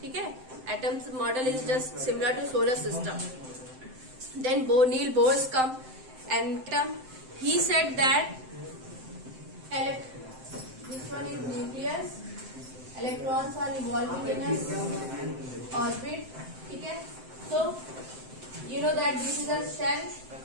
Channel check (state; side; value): late; left; 7.7 ms